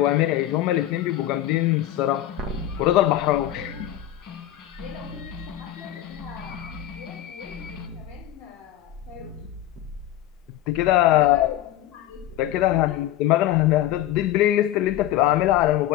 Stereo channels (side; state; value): right; quieter; 13.1 dB